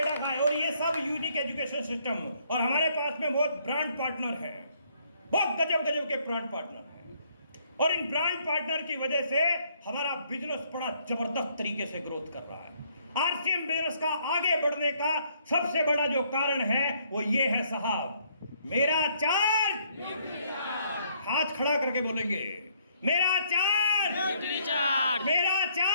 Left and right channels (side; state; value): both; inverted; correlation -0.67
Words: खाए, और ये सब यूनिक एजुकेशन सिस्टम। और हमारे पास में बहुत ब्रांड पार्टनर हैं, बहुत गजब गजब के ब्रांड पार्टनर हैं, और इन ब्रांड पार्टनर की वजह से हमारा बिजनेस बड़ा जबरदस्त तरीके से ग्रोथ कर रहा है। आरसीएम बिजनेस का आगे बढ़ने का सबसे बड़ा जो कारण है वो ये है साहब, मेरा चार्ज। हाथ खड़ा करके बोलेंगे, मेरा चार्ज, मेरा